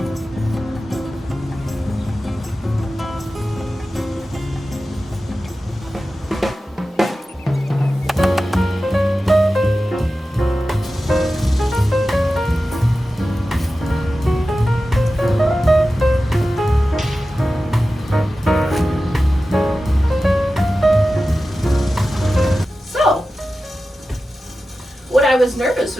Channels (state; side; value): normal; both; correlation 0.94